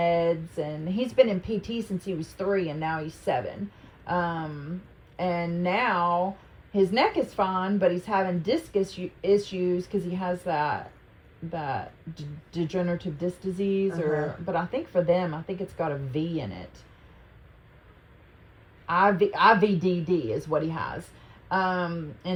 and he's been in PT since he was 3, and now he's 7. And now his neck is fine, but he's having disc issues because he has that degenerative disc disease, but I think for them, I think it's got a V in it. IVDD is what he has.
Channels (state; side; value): identical; both; correlation 1.00